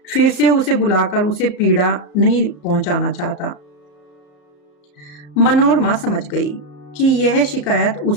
फिर से उसे बुलाकर उसे पीड़ा नहीं पहुंचाना चाहता। मनोरमा समझ गई कि यह शिकायत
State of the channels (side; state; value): right; late; 34 ms